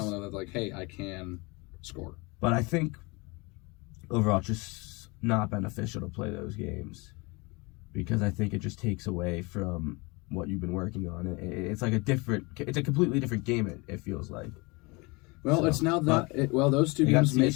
of them that, like, hey, I can score. But I think overall it's just not beneficial to play those games because I think it just takes away from what you've been working on. It's like it's a completely different game, it feels like. Well, it's now those two games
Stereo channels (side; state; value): right; quieter; 26.8 dB